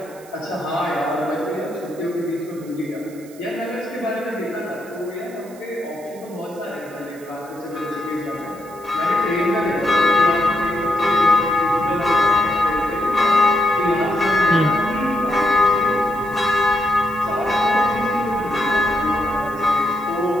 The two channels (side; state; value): right; noise; hiss, 23 dB below the sound